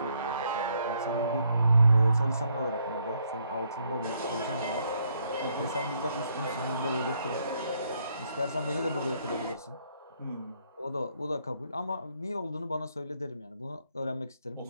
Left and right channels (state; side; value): inverted; both; correlation -0.72